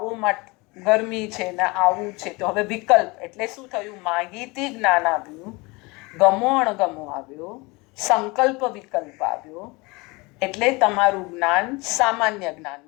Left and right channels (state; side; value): quieter; right; 25.2 dB